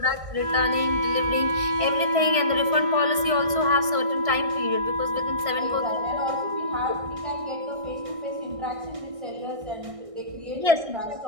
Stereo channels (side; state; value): left; late; 1.6 ms